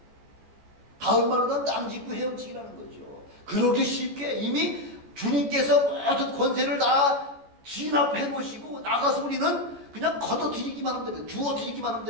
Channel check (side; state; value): left; late; 14 ms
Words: 다음 말로는 땅 짚고 헤엄치기라는 거죠. 그렇게 쉽게 이미 주님께서 모든 권세를 다 진압해 놓으시고 나가서 우리는 그냥 걷어들이기만 하면 되는 거예요. 주워들이기만 하면